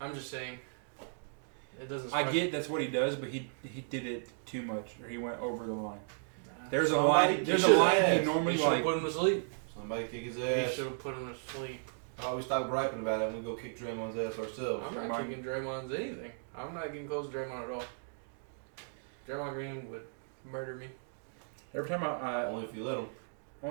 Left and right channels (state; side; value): silent; left; digital silence